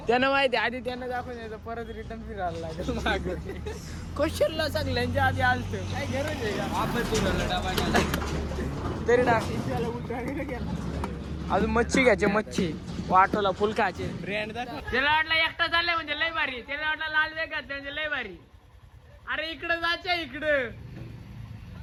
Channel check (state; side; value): identical; both; correlation 1.00